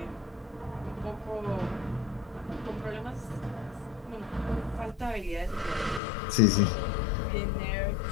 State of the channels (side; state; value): right; drops out; at 6.0 s